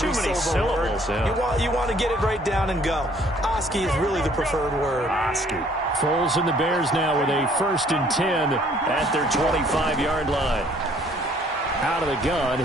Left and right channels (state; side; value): normal; both; correlation 0.60